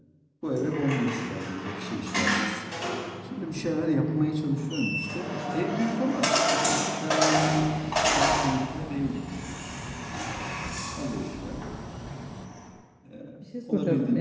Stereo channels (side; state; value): both; identical; correlation 1.00